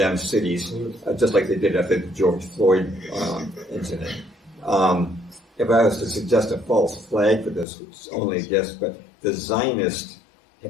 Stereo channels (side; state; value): right; drops out; at 7.7 s